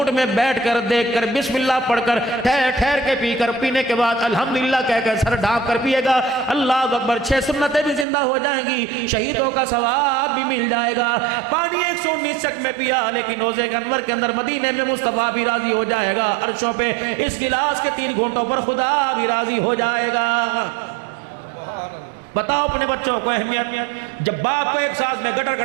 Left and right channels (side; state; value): left; drops out; at 8.1 s